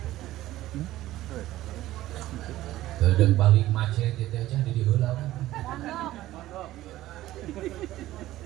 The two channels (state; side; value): quieter; left; 15.3 dB